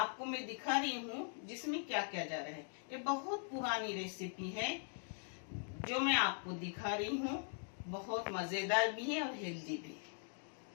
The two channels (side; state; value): right; silent; 50 dB below the other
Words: मैं दिखा रही हूँ जिसमें क्या क्या जा रहा है। ये बहुत पुरानी रेसिपी है जो मैं आपको दिखा रही हूँ। बहुत मजेदार भी है और हेल्दी भी।